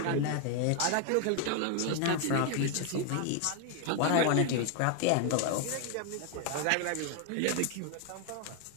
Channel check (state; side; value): different; both; correlation 0.01